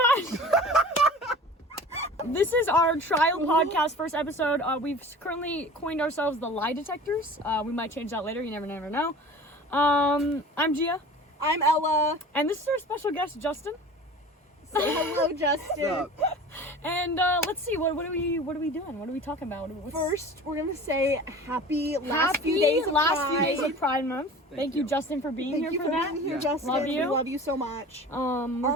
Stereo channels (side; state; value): both; normal; correlation 0.40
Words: This is our trial podcast first episode. We've currently coined ourselves the Lie Detectors. We might change that later. You never know. I'm Gia. I'm Ella. And this is our special guest, Justin. Say hello, Justin. And let's see, what are we doing? What are we talking about? First, we're gonna say happy last few days of Pride Month. Thank you, Justin, for being here for that. Thank you for being here, Justin. Love you. We love you so much.